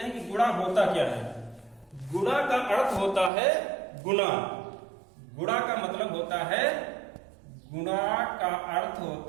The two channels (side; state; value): left; drops out; at 3.3 s